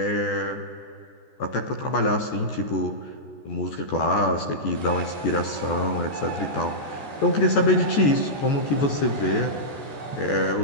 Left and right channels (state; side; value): late; right; 14 ms